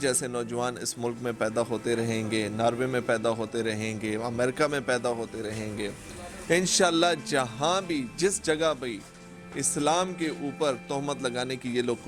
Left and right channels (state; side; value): identical; both; correlation 1.00